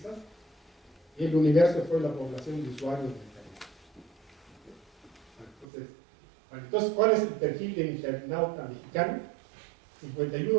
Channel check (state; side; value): drops out; left; at 5.7 s